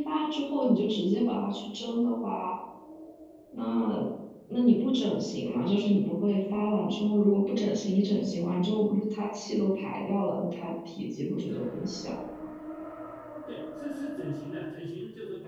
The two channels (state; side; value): identical; both; correlation 1.00